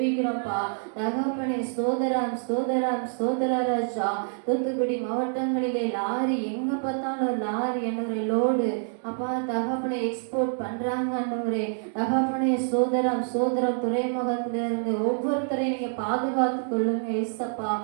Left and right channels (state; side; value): silent; left; digital silence